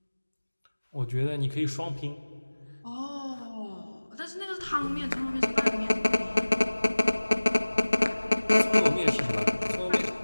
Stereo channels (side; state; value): both; inverted; correlation -1.00